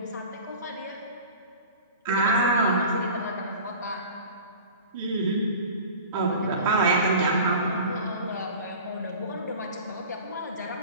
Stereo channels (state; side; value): inverted; both; correlation -0.39